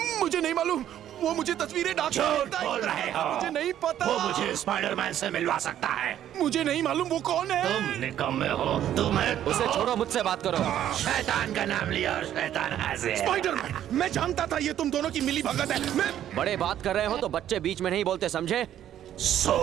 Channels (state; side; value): quieter; left; 11.2 dB